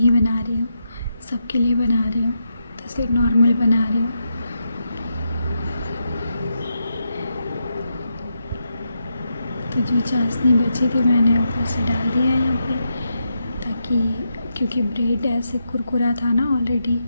बना रही हूँ, सबके लिए बना रही हूँ, तो सिर्फ नॉर्मल बना रही हूँ। तो जो चाशनी बची थी मैंने ऊपर से डाल दिया है यहाँ पे, ताकि क्योंकि ब्रेड ऐसे कुरकुरा था ना ऑलरेडी,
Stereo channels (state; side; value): inverted; both; correlation -0.84